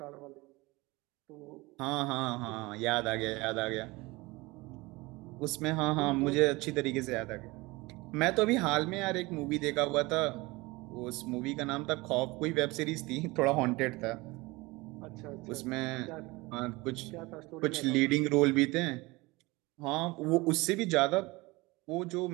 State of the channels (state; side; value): quieter; left; 22.7 dB